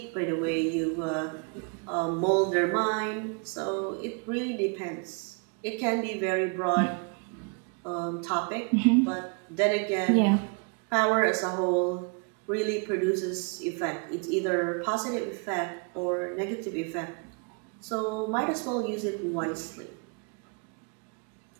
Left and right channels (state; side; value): quieter; left; 34.5 dB